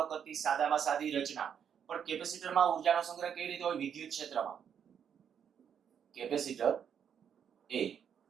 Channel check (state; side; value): quieter; left; 8.1 dB